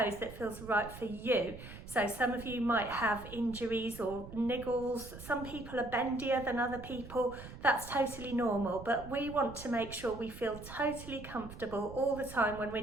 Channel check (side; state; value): right; noise; rumble, 14 dB below the sound